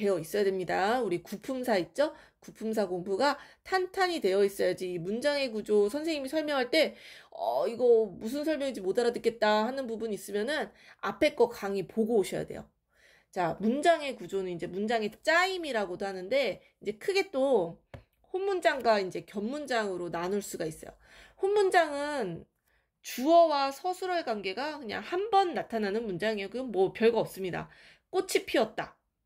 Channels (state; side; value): identical; both; correlation 1.00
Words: 있어야 됩니다. 우리 구품사 있죠? 구품사 공부가 탄탄히 되어 있어야지 이 문장의 구조 선생님이 설명할 때 이거 무슨 설명인지 못 알아듣겠다 하는 부분 있으면은 앞에 거 강의 보고 오셔야 돼요. 자, 문장의 구조는 이제 문장의 짜임이라고도 하는데 이제 크게 또 혼문장과 이제 겹문장으로 나눌 수가 있어요. 혼문장은 주어와 서술어의 관계가 그냥 한 번 나타나는 문장이에요. 그건 뭐 별거 없습니다. 꽃이 피었다.